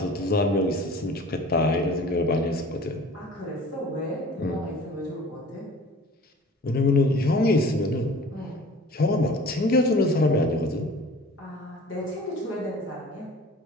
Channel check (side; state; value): both; normal; correlation 0.43